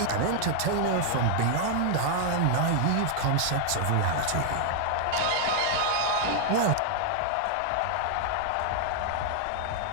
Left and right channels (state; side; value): different; both; correlation 0.00